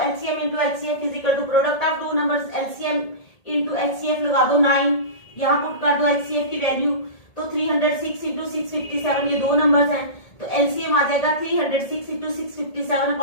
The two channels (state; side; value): late; right; 1.8 ms